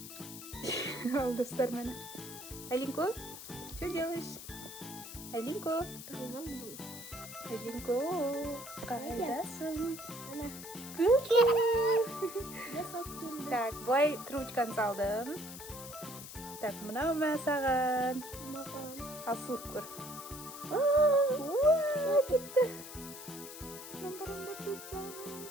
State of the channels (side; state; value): left; noise; hiss, 12 dB below the sound